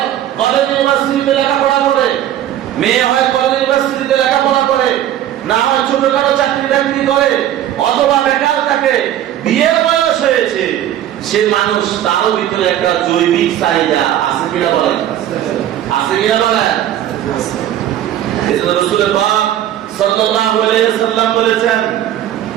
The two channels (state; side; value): quieter; left; 11.7 dB